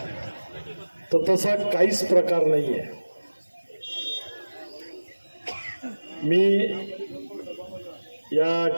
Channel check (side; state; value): both; inverted; correlation -1.00